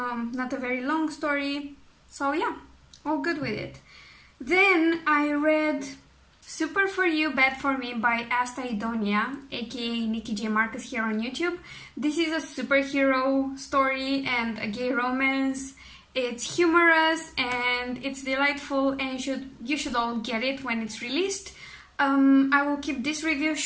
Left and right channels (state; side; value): identical; both; correlation 1.00